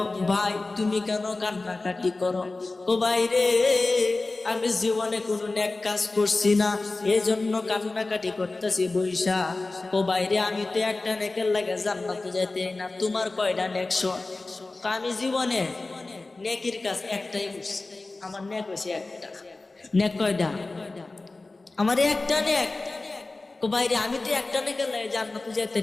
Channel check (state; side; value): quieter; right; 3.3 dB